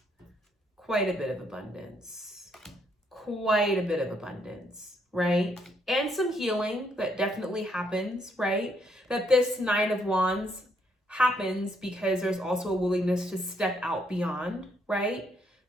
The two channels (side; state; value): both; normal; correlation 0.72